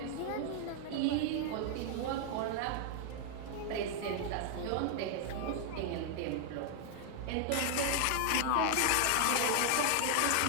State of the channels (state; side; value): different; both; correlation 0.00